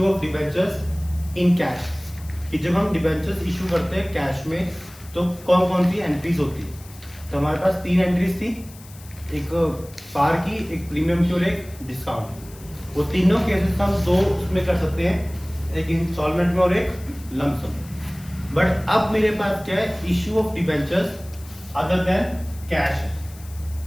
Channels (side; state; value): left; noise; hiss, 21 dB below the sound